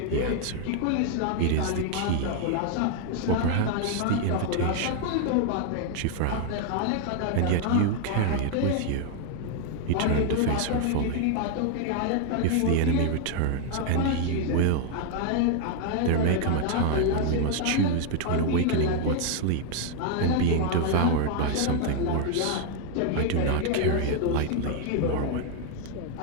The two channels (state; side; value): different; both; correlation 0.00